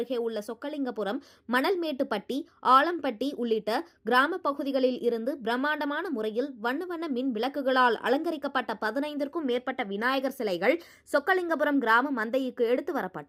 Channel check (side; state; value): both; identical; correlation 1.00